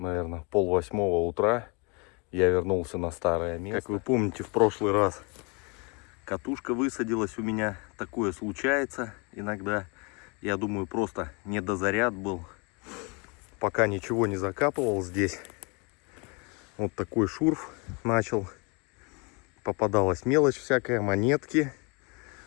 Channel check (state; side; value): quieter; right; 31.3 dB